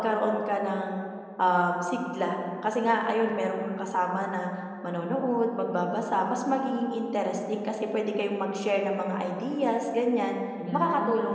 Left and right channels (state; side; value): identical; both; correlation 1.00